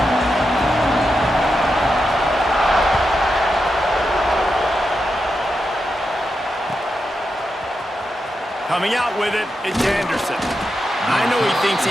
Coming out with it, it's Anderson. I know he thinks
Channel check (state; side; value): normal; both; correlation 0.87